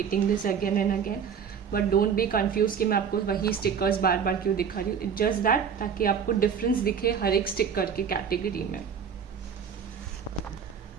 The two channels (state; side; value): quieter; left; 7.1 dB